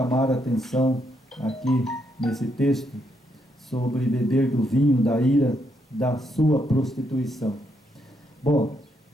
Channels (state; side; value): normal; both; correlation 0.77